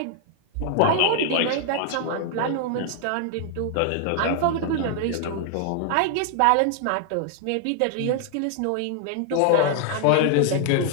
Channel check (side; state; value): both; different; correlation 0.00